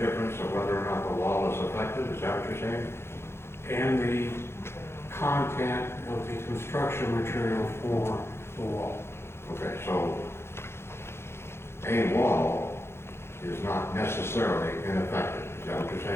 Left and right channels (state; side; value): late; right; 0.12 ms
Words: of whether or not the wall is affected? Is that what you're saying? And the content of the construction material for the wall. Okay, so a wall is not necessarily ineffective. Is that what you're